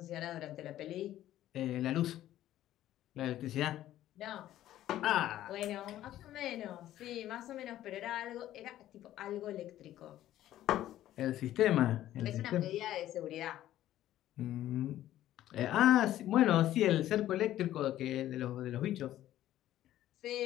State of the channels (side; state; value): right; quieter; 13.3 dB